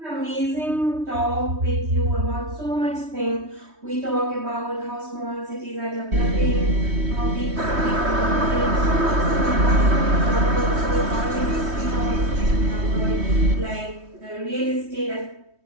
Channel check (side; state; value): left; late; 3.2 ms